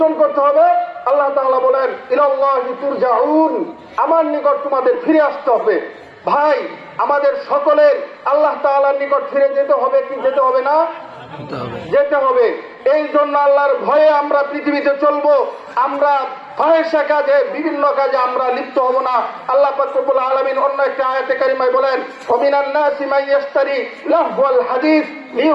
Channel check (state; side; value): identical; both; correlation 1.00